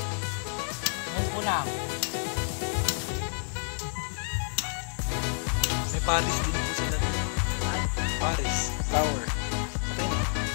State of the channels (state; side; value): silent; right; digital silence